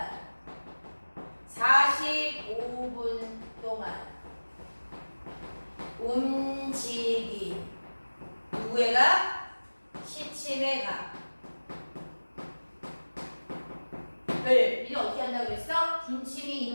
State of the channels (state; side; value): inverted; both; correlation -1.00